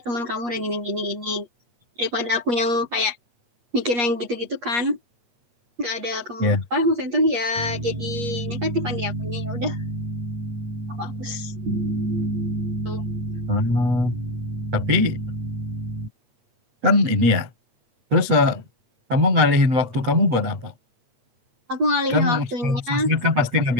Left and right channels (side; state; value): left; late; 8.4 ms